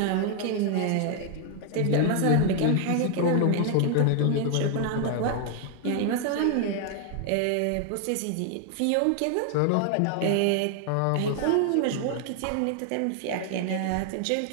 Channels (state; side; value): different; both; correlation 0.00